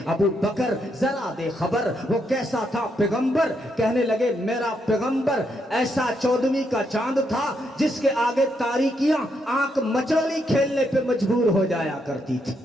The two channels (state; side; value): normal; both; correlation 0.78